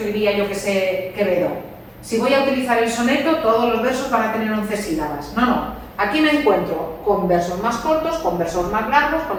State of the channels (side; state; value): both; identical; correlation 1.00